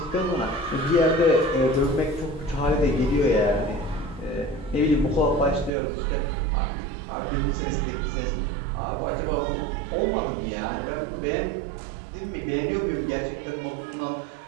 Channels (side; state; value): left; drops out; at 5.7 s